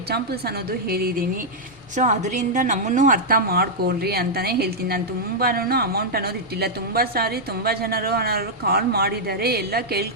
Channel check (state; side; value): normal; both; correlation -0.06